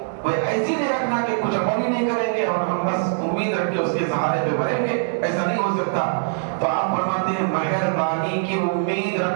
ایسی نہیں رکھنا کہ کچھ عمل ہی نہیں کریں گے اور ہم بس امید رکھ کے اس کے سہارے پہ بھریں گے، ایسا نہیں ہو سکتا. تو آپ فرماتے ہیں مہربانی کی امید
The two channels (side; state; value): left; silent; 63 dB below the other